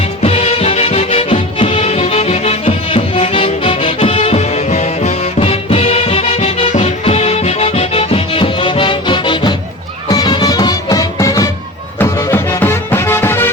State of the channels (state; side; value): normal; both; correlation 0.30